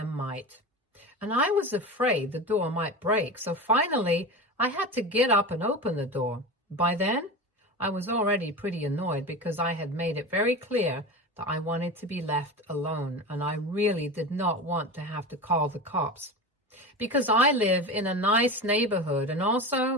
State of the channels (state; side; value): normal; both; correlation 0.27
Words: might. And I was afraid the door might break, so finally, I had to get up and open the door. By then, I was already pretty annoyed because I had made it very clear that I wanted to be left alone, and I really did not want to have to call the cops. Because I live in a nice neighborhood, and